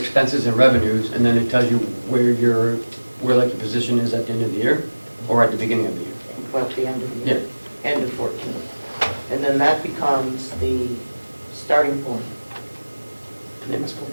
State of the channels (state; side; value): inverted; both; correlation -1.00